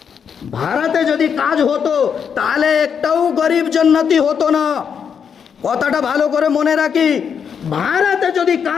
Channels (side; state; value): right; quieter; 7.2 dB